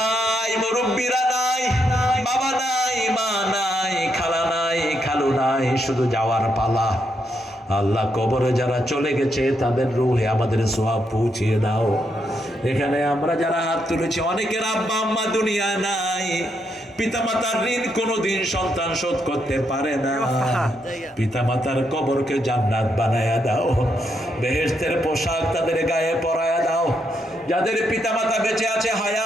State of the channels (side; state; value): both; normal; correlation 0.79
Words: মুরব্বীরা নাই, বাবা নাই, মা নাই, খালা নাই, খালু নাই, শুধু যাওয়ার পালা। আল্লাহ, কবরে যারা চলে গেছে তাদের রূহে আমাদের সওয়াব পৌঁছিয়ে দাও। এখানে আমরা যারা হাত তুলেছি, অনেকের আব্বা আম্মা দুনিয়া নাই, পিতামাতার ঋণ কোনোদিন সন্তান শোধ করতে পারে না। পিতামাতার কবরকে জান্নাত বানায়া দাও, বেহেশতের পোশাক তাদের গায়ে পরায়া দাও। যাদের পিতামাতা বেঁচে আছে